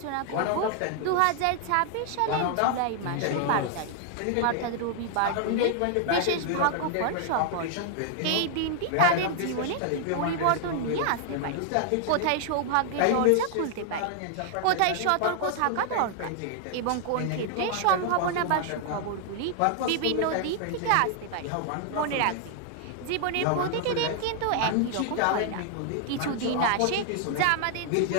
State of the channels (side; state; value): both; different; correlation 0.00